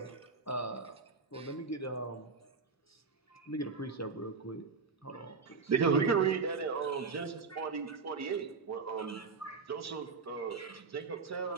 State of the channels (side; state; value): left; quieter; 4.9 dB